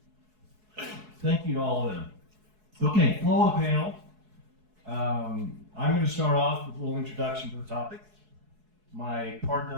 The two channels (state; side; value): late; left; 4.7 ms